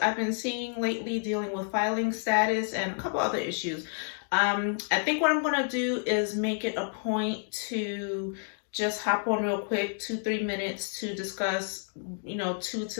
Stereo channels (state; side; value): silent; right; 58 dB below the other